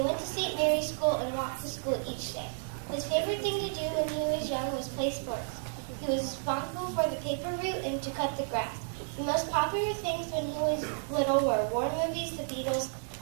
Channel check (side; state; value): left; silent; 57 dB below the other